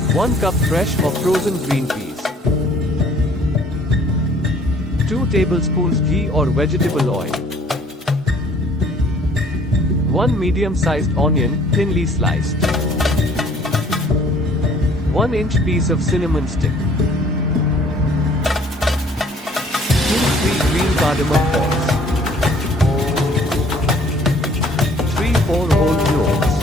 1 cup fresh or frozen green peas, 2 tablespoons ghee or vegetable oil, 1 medium-sized onion, thinly sliced, 1-inch piece of cinnamon stick, 2-3 green cardamom pods, 3-4 whole cloves,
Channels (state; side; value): normal; both; correlation 0.57